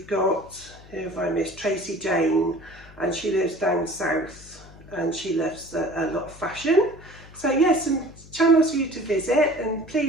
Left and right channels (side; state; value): left; noise; hum, 21 dB below the sound